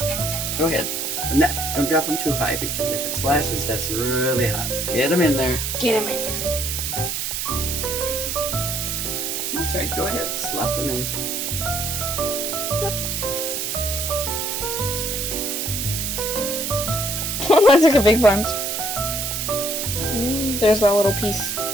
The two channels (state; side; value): noise; right; hiss, 2 dB below the sound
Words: go ahead. But don't drop them too high because if it splashes, that's really hot. Get them in there. Get him in here. That's right, go ahead, slap them in. That took a big bunch. There's that little piece.